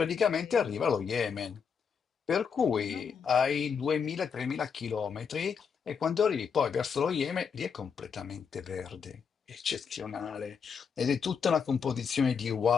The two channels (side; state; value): right; quieter; 6.4 dB